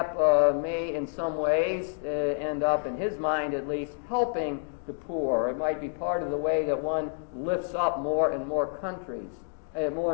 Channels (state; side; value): silent; right; digital silence